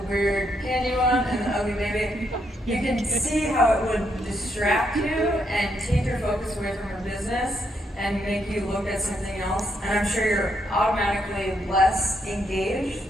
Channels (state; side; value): normal; both; correlation 0.76